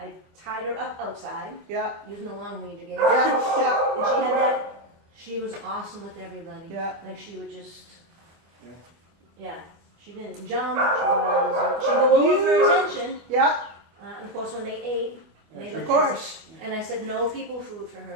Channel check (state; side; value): late; left; 25 ms